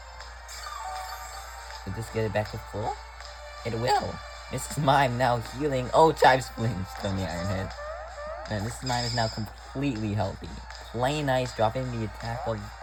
Did this get it back to full? It will. Mrs. Mime now healing. Oh, Chives flinched from the Iron Head. And Mrs. Mime is now completely healthy. Plain Ice dropping the attack of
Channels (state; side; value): identical; both; correlation 1.00